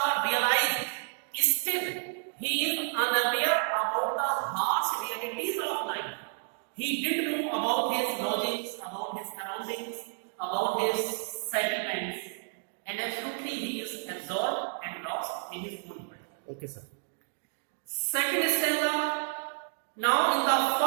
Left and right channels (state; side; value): silent; left; 57 dB below the other